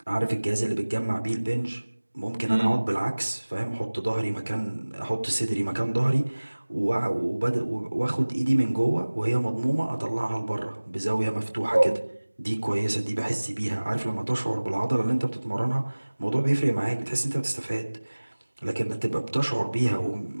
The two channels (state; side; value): inverted; both; correlation -1.00